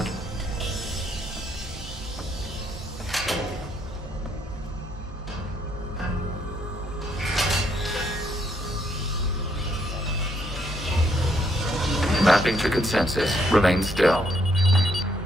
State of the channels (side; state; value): both; normal; correlation 0.72